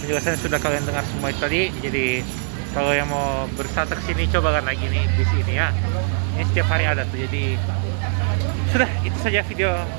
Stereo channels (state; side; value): silent; left; digital silence